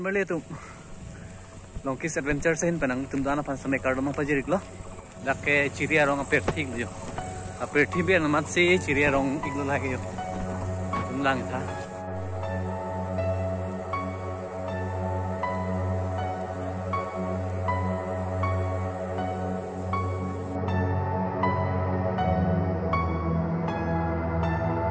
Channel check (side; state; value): both; identical; correlation 1.00